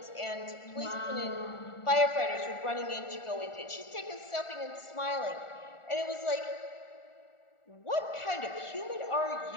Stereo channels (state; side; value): late; right; 1.4 ms